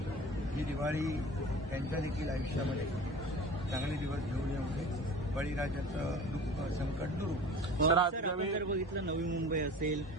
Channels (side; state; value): both; normal; correlation 0.39